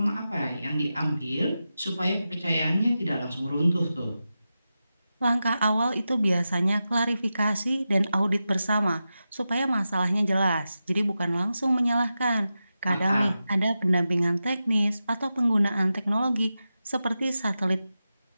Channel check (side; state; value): both; inverted; correlation -0.91